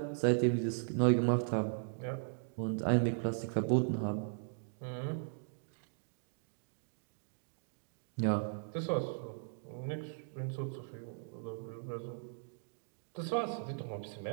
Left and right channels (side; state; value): left; silent; digital silence